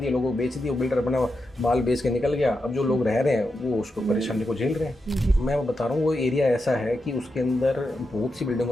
लोगों को बेच दिए, वो बिल्डर अपना माल बेच के निकल गया। अब जो लोग रह रहे हैं वो उसको परेशानी को झेल रहे हैं। मैं बता रहा हूँ वो एरिया ऐसा है कि उसके अंदर बहुत सी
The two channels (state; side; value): normal; both; correlation 0.87